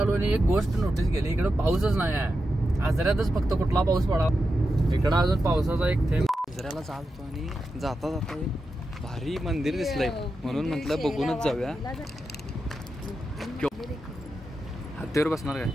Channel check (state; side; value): normal; both; correlation 0.89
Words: आणि एक गोष्ट नोटीस केली, इकडं पाऊसच नाही आहे. आजऱ्यातच फक्त कुठला पाऊस पडा. इकडं अजून पावसाचा एक थेंब. आजऱ्याला चालतो आणि जाता जाता एक भारी मंदिर दिसलंय म्हणून म्हटलं बघूनच जाऊया. हत्तीवर बसणार काय?